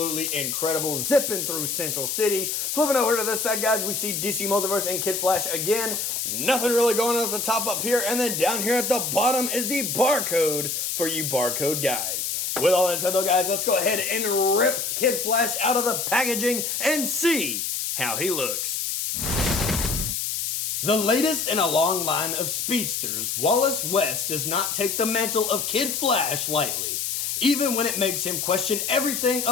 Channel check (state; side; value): noise; left; hiss, 2 dB below the sound